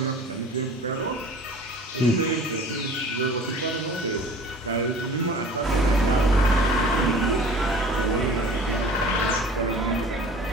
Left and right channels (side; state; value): both; normal; correlation 0.45